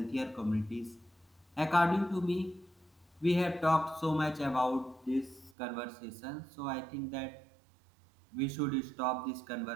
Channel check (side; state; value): left; drops out; at 5.5 s